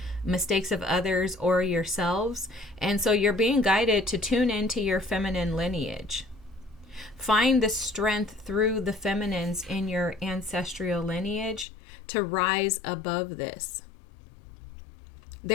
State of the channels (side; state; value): right; drops out; at 11.7 s